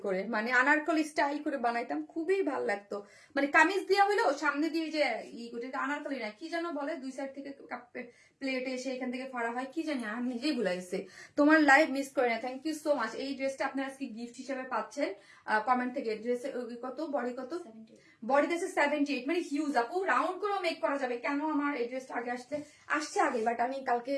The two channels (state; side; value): identical; both; correlation 1.00